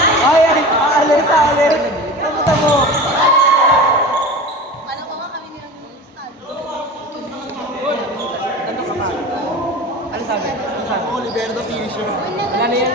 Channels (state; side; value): normal; both; correlation 0.34